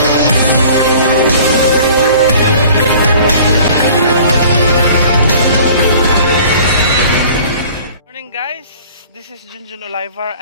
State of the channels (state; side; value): inverted; both; correlation -0.48